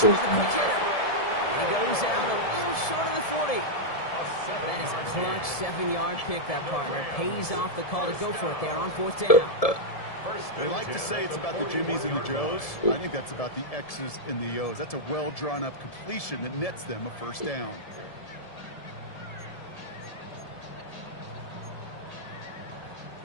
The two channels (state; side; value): late; right; 1.7 ms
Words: He goes out a little short of the 40. That is a clutch 7-yard pickup, partner. Pays off the call to go for it there on 4th down. They like to say it's about the Jimmies and the Joes. I think that's about the X's and the O's. That's a well-drawn-up completion that nets them a 1st down.